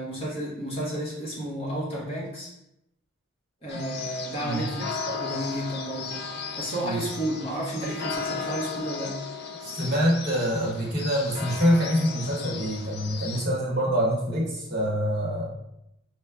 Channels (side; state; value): both; normal; correlation 0.49